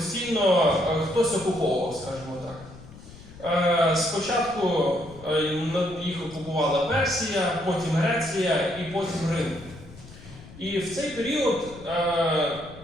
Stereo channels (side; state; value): left; noise; rumble, 18 dB below the sound